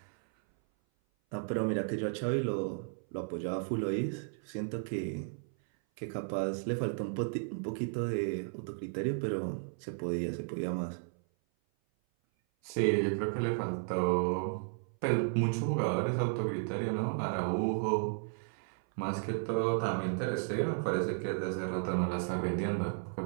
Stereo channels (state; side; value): silent; left; 55 dB below the other